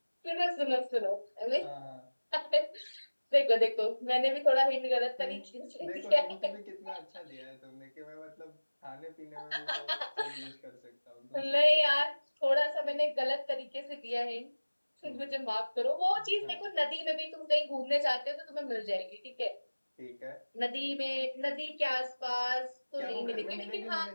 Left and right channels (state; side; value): inverted; both; correlation -1.00